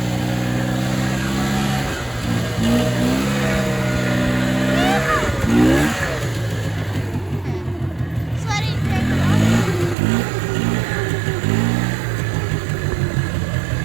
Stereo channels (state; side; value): drops out; left; at 10.0 s